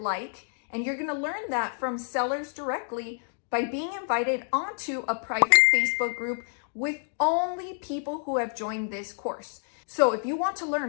like, and you're going to learn that from sellers directly by being invited onto a private Facebook group with only people who have joined this course. So if you want to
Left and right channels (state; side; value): silent; right; digital silence